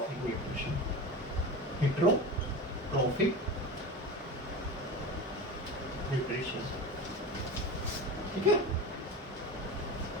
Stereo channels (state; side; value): normal; both; correlation 0.29